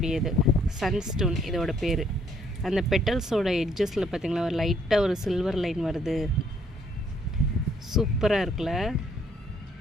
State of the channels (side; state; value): both; normal; correlation 0.67